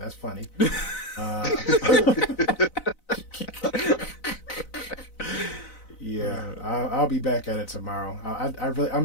funny. Yeah, I'll be back at it tomorrow.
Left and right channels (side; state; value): right; late; 4.0 ms